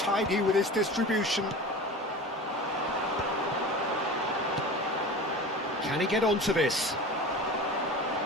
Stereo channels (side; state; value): both; normal; correlation 0.34